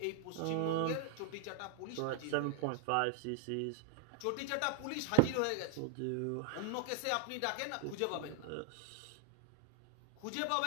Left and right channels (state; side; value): different; both; correlation 0.00